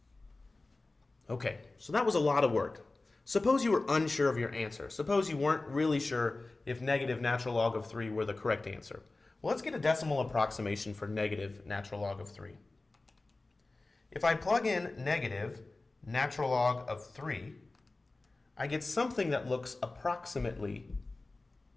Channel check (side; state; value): right; quieter; 3.2 dB